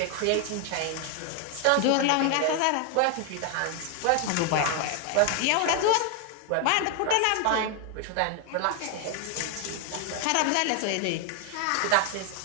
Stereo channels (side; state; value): both; different; correlation 0.01